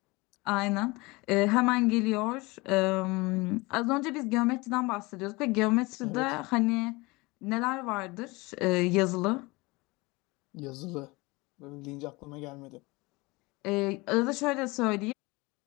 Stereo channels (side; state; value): right; quieter; 24.0 dB